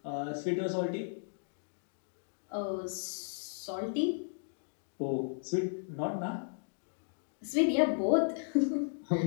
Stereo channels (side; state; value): right; silent; digital silence